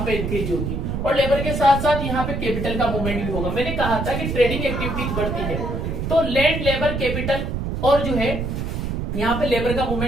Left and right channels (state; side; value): noise; right; rumble, 2 dB below the sound